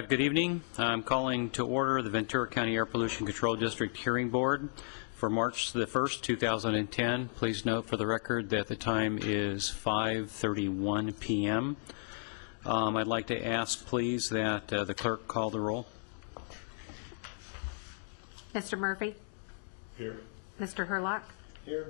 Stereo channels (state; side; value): silent; right; digital silence